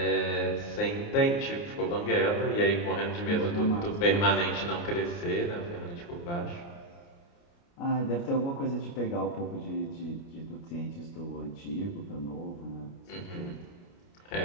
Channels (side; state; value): right; late; 29 ms